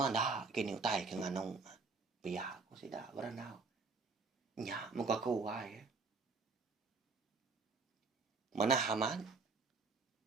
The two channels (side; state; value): left; quieter; 4.3 dB